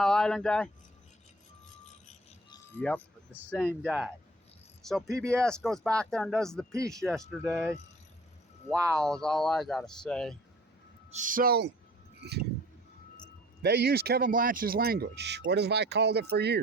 Island guy. Yep, the same guy. So PBS goes back there and does the piece yesterday. Wow, is all I gotta say. So they use Kevin Blanch's language. What have I called it for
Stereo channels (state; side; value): normal; both; correlation 0.49